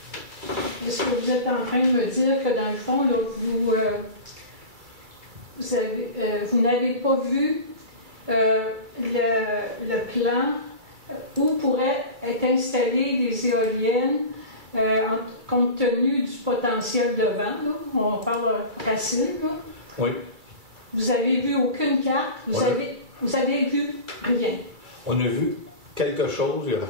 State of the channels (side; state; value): left; late; 2.3 ms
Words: Est-ce que vous êtes en train de me dire que dans le fond, là, vous n'avez pas vu le plan où pourraient être installées des éoliennes compte tenu du potentiel de vent, là? On parle Racine, là. Oui. Vous n'avez vu aucune carte, vous avez vu rien. On a vu quelque chose, il n'y a